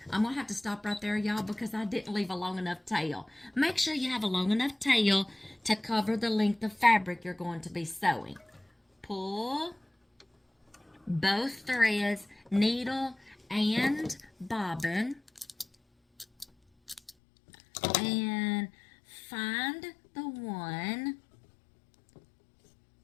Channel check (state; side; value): drops out; right; at 17.1 s